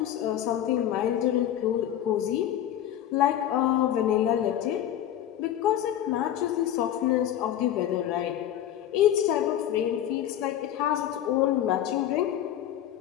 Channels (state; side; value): quieter; right; 11.2 dB